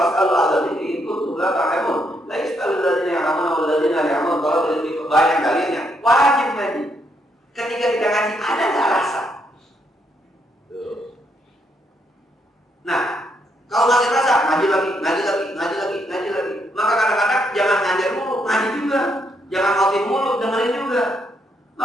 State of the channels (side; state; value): both; normal; correlation 0.76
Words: Allah ini ikut tugas kamu. Lagi sekali lagi yang kamu nama lagi yang kamu kalau tidak banyak kalian yang wajib ngaji. Ketika kita ngaji ada nggak rasa? Nah, kalau nggak rasa ngaji lagi. Maka kadang-kadang jangan ngajar mulu, ngaji juga. Jangan khotib mulu, dengerin juga.